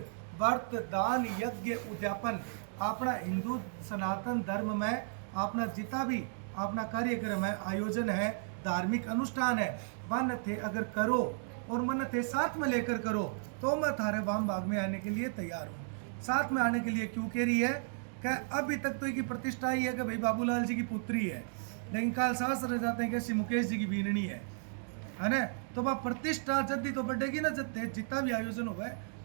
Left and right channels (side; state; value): left; silent; digital silence